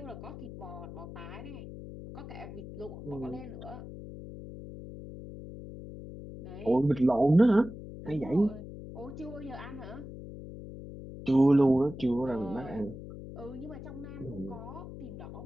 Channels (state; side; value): noise; left; hum, 12 dB below the sound